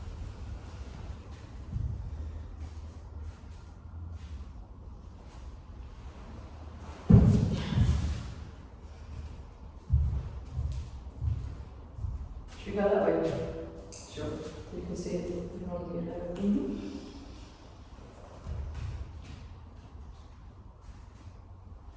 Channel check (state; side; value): identical; both; correlation 1.00